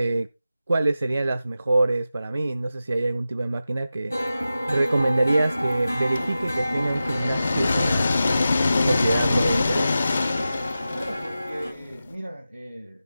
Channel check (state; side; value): inverted; both; correlation -0.93